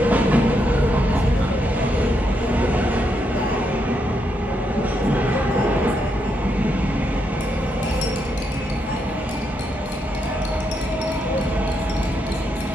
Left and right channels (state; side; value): normal; both; correlation 0.80